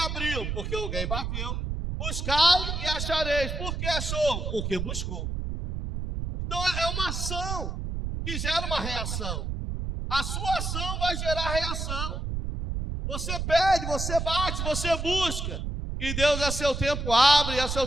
Porque alguém bateu. Buscai e achareis. Por que achou? Porque buscou. Então é uma ação que gera uma reação. A sua ação vai gerar reação. Você pede, você bate, você busca. E Deus a seu tempo abre, a seu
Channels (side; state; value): right; noise; rumble, 3 dB below the sound